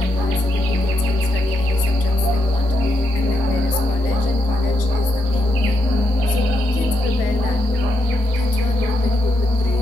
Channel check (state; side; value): normal; both; correlation 0.81